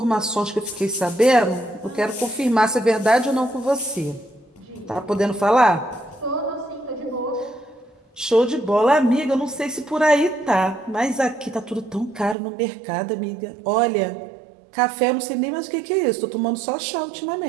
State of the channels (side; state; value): left; drops out; at 12.4 s